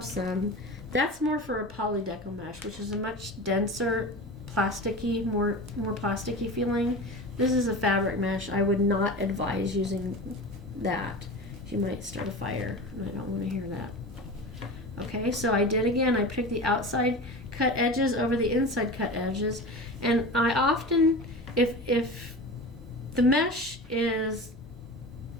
some. That's more for a poly deco mesh, which is a much denser, plasticky, more plasticky feeling. This is a fabric mesh. I would not advise using that. You might start a fire, and I don't want to hear that. Okay, so I did again. I picked the outside cut edges over the inside cut edges. And I often, if the mesh is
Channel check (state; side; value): normal; both; correlation 0.31